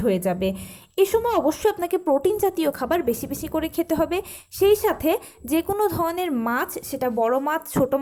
হয়ে যাবে। এ সময় অবশ্যই আপনাকে প্রোটিন জাতীয় খাবার বেশি বেশি করে খেতে হবে। সেই সাথে যে কোনো ধরনের মাছ, সেটা বড় মাছ, ছোট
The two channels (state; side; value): identical; both; correlation 1.00